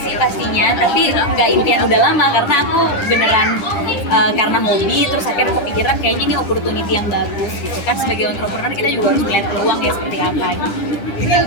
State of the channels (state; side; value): late; right; 10 ms